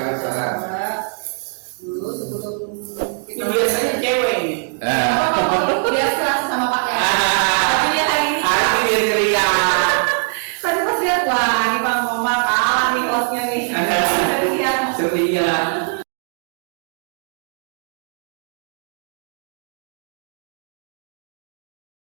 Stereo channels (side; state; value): left; silent; digital silence